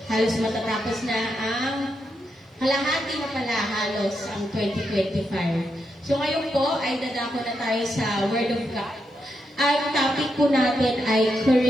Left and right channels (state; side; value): normal; both; correlation 0.83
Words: Halos matatapos na ang kalahati na pala halos ang 2025. So ngayon po ay dadako na tayo sa Word of God. Ang topic po natin ay